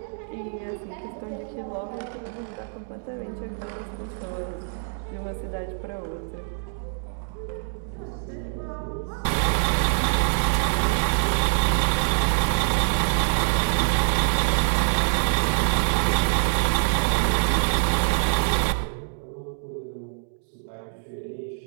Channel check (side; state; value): left; silent; 62 dB below the other